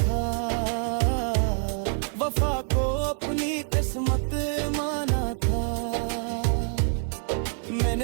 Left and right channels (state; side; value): silent; left; 61 dB below the other